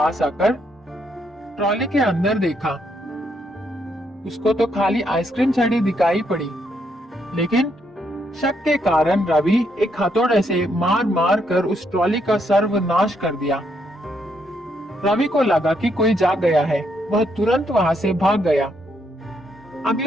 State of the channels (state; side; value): normal; both; correlation 0.75